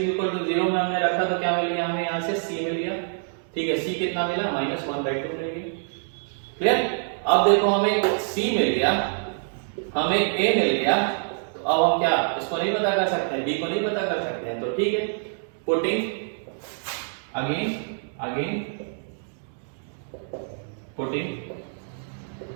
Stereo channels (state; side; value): silent; left; digital silence